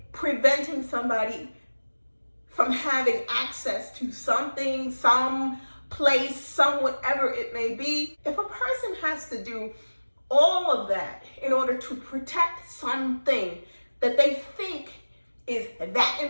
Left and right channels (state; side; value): inverted; both; correlation -1.00